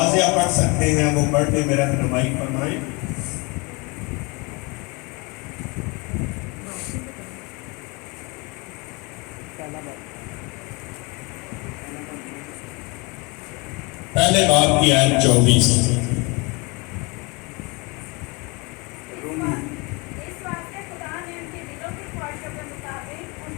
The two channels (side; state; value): right; quieter; 28.1 dB